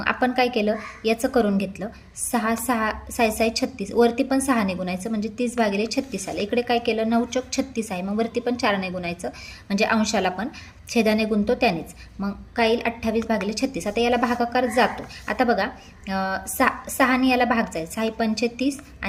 आपण काय केलं, याचं करून घेतलं. 6 6 6 6 36 वरती पण 6ने गुणायचं, म्हणजे 30 भागिले 36 आलं. इकडे काय केलं, 9 चौक 36 आहे, मग वरती पण 4ने गुणायचं, म्हणजे अंशाला पण छेदाने गुणतो त्यानेच. मग काय येईल, 28 भागिले 36. आता याला भागाकार जातो. आता बघा 6ने याला भाग जाईल, 6 पंचे 30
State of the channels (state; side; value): identical; both; correlation 1.00